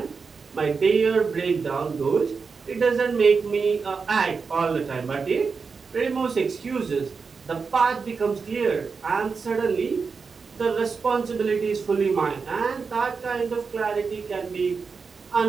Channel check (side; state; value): left; quieter; 5.1 dB